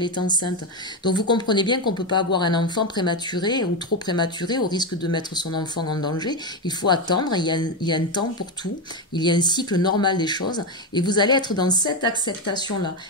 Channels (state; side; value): normal; both; correlation 0.11